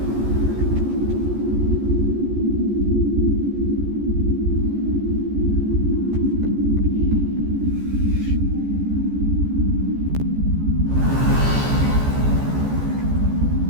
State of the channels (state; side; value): late; left; 14 ms